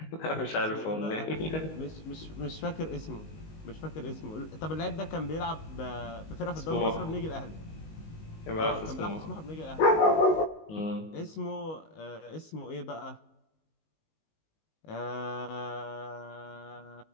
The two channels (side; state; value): right; late; 19 ms